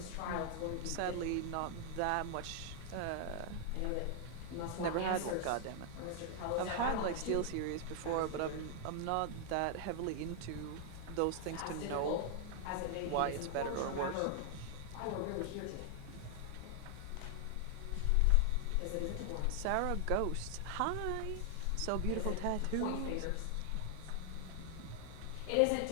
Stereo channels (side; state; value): both; different; correlation 0.00